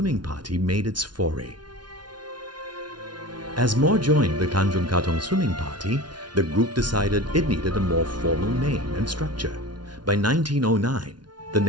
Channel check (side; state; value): left; late; 0.70 ms